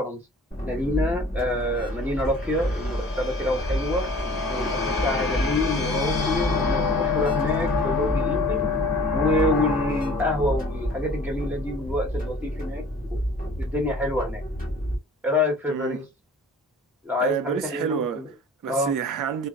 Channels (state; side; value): normal; both; correlation 0.47